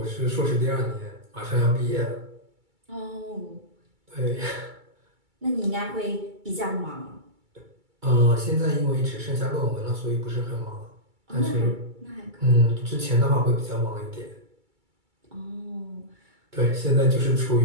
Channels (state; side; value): late; left; 2.3 ms